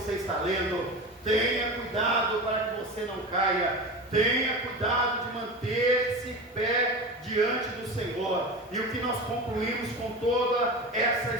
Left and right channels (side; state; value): both; normal; correlation 0.28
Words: está lendo. Tenha cuidado para que você não caia, tenha cuidado de manter-se pé diante do Senhor. E o que nós concluímos com toda essa